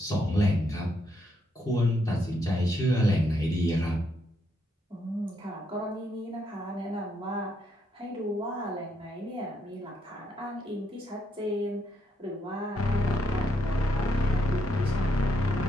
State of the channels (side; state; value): both; normal; correlation 0.77